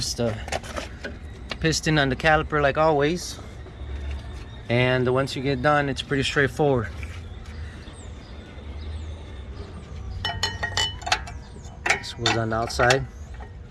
the piston on the caliper like always, and once you get done it's pretty straightforward. This was on the outside,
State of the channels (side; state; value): both; identical; correlation 1.00